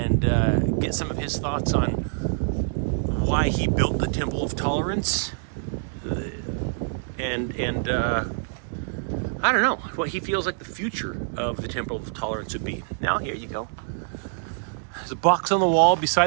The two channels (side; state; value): left; silent; digital silence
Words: get some of his thoughts on why he built the Temple of Tolerance. And I don't know what he feels like the future of the Temple of Tolerance would be. Now, here you go. There's a box on the wall